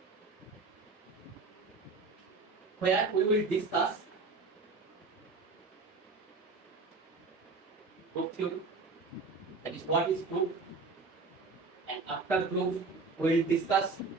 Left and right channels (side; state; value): left; quieter; 3.9 dB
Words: Where we will discuss group theory, that is what is group, and after group we will discuss